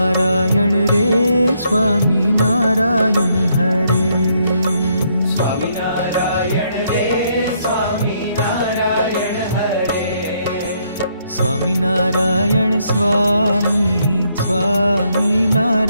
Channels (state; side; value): inverted; both; correlation -0.73